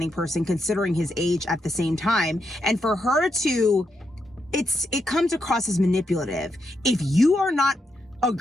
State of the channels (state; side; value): normal; both; correlation 0.82